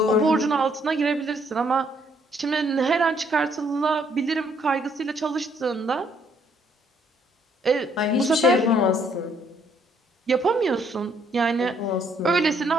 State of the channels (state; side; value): normal; both; correlation 0.67